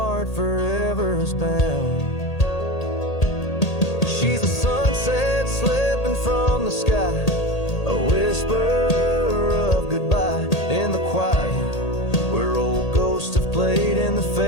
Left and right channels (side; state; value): right; late; 1.8 ms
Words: forever bound. She's a sunset slipping from the sky, a whisper of goodbye in the quiet, where old ghosts have played in the